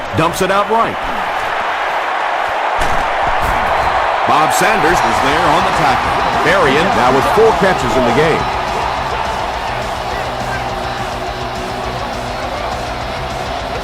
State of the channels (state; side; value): identical; both; correlation 1.00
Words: Dumps it out right. Bob Sanders was there on the tackle. Berrien now with 4 catches in the game.